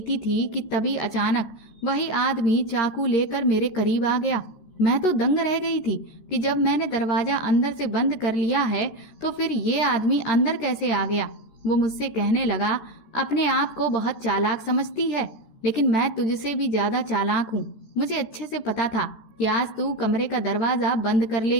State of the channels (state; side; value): late; right; 14 ms